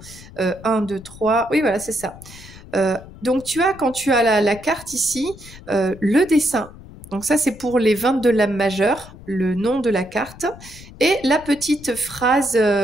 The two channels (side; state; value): left; noise; rumble, 18 dB below the sound